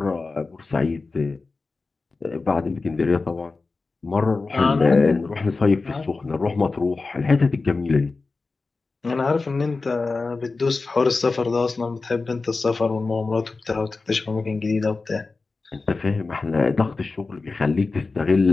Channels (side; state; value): right; quieter; 3.9 dB